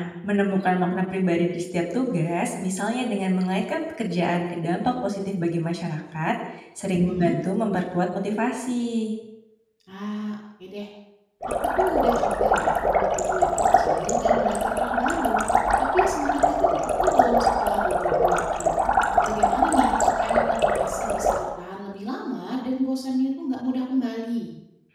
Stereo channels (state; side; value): identical; both; correlation 1.00